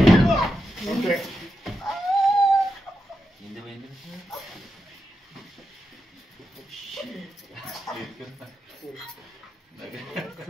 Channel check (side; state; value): both; normal; correlation 0.87